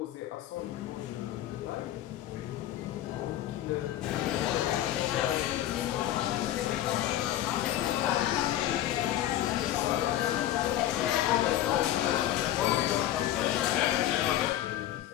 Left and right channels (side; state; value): right; quieter; 12.9 dB